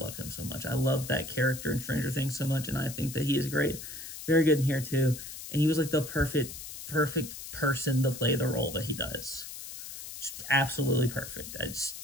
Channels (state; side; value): noise; left; hiss, 11 dB below the sound